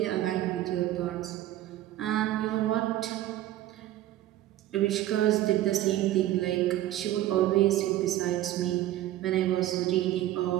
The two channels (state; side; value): quieter; left; 14.0 dB